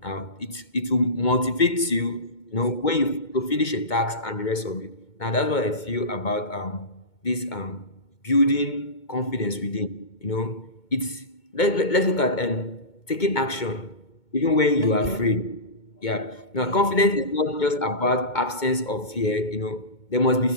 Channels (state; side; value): late; right; 2.2 ms